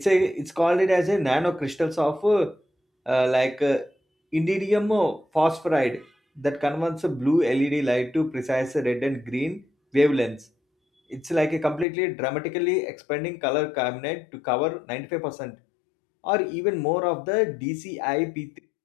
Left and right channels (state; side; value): drops out; right; at 11.9 s